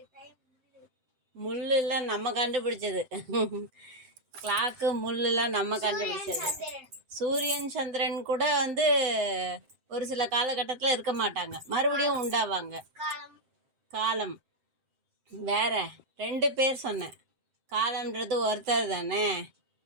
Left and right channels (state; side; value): late; left; 7.7 ms